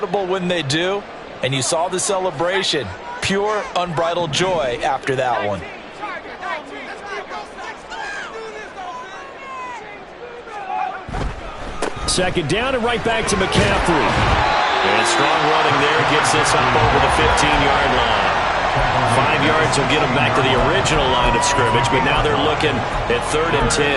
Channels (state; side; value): identical; both; correlation 1.00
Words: when they do. And you saw the celebration. Pure, unbridled joy after that one. Second down and right back to McCaffrey. And strong running there gets this up over the 15-yard line. 5 yards will get them back to the original line of scrimmage, but now they're looking at 3rd and